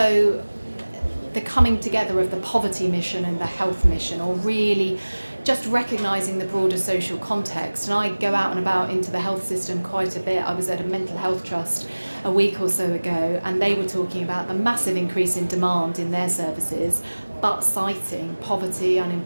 the coming together of the poverty mission and the health mission, or really just recognising the broader social context. And I go out and about into the health system quite a bit. I was at a mental health trust a week or so ago, and they were talking about the massive increase in demand in their services, but citing poverty,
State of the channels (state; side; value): inverted; both; correlation -1.00